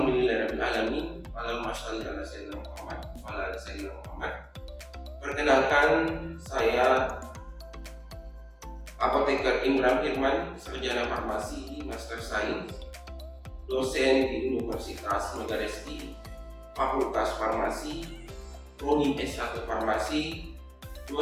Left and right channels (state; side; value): identical; both; correlation 1.00